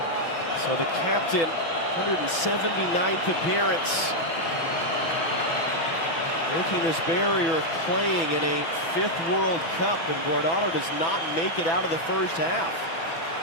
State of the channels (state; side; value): late; right; 6.0 ms